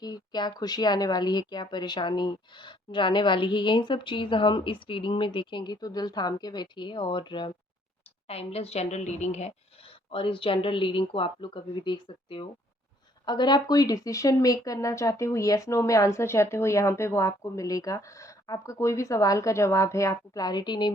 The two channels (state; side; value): normal; both; correlation 0.64